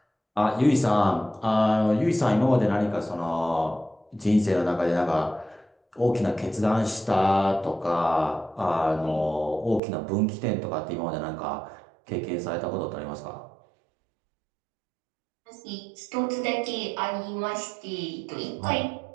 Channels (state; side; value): drops out; left; at 9.8 s